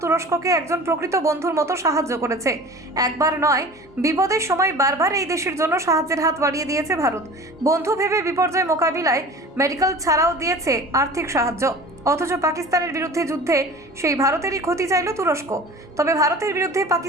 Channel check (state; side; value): normal; both; correlation 0.40